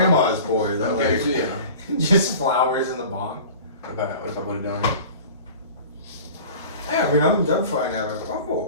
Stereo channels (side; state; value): both; inverted; correlation -0.40